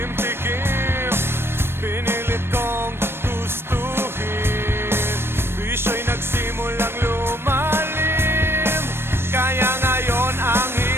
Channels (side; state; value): left; late; 0.12 ms